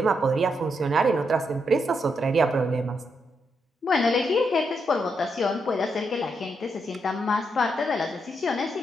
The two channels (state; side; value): normal; both; correlation 0.80